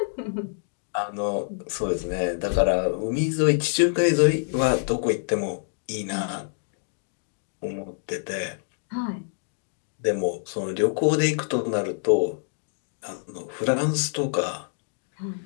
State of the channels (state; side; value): silent; right; digital silence